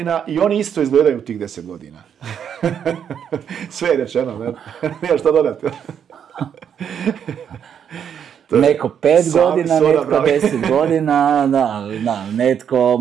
i oni isto izgledaju u tih 10 godina. Sve je rečeno, ne? Nije što dodati. Neko 5 godina, netko 10 godina, da, netko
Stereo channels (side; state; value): left; quieter; 8.3 dB